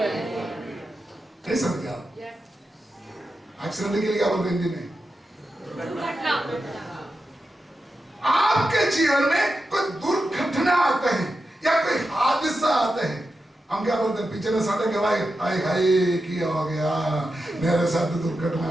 नहीं समझ आप? एक्सीडेंट के लिए क्या बोलते हैं हिंदी में? आपके जीवन में कोई दुर्घटना आते हैं या कोई हादसा आते हैं, हम क्या बोलते हैं? पिछले साढ़े के भाई हाय हाय क्या हो गया, मेरे साथ दुर्घटना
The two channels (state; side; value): normal; both; correlation 0.89